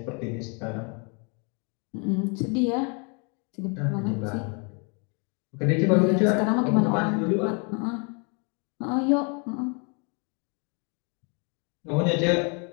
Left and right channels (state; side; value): quieter; right; 35.6 dB